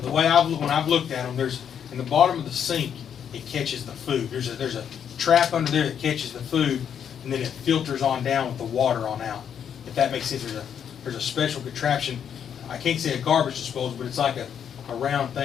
way when I've looked at them, there's, in the bottom of the sink, it catches the food. There's a trap under there that catches the food, and then it filters on down with the water on out. If that makes sense, there's a special contraption. I can't say a garbage disposal, but it's like a round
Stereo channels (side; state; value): right; quieter; 8.4 dB